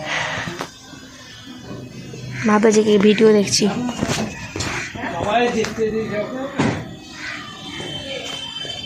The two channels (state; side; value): identical; both; correlation 1.00